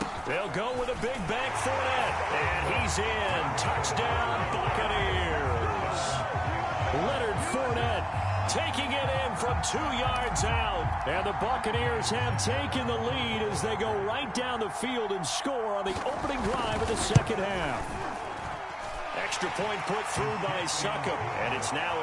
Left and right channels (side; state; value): both; identical; correlation 1.00